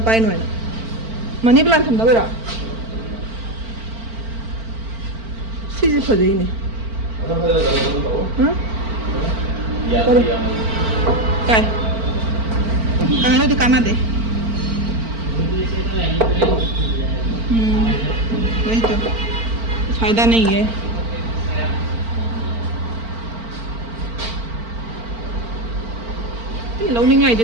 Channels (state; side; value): late; left; 4.4 ms